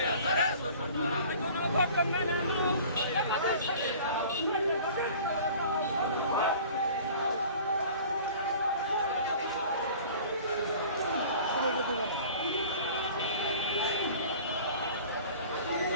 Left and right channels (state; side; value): inverted; both; correlation -0.44